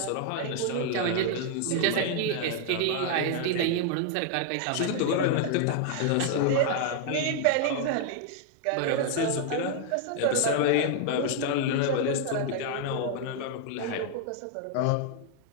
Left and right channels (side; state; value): both; different; correlation 0.00